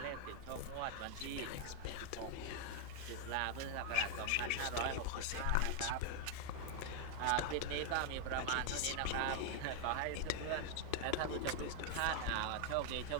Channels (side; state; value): both; different; correlation 0.00